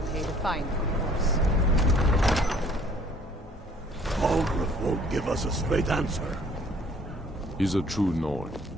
pay the fine, of course. Balgruuf won't give us a straight answer. He's a true Nord.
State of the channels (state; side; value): normal; both; correlation 0.57